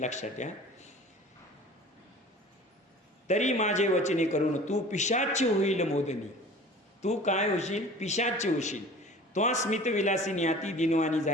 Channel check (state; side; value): normal; both; correlation 0.43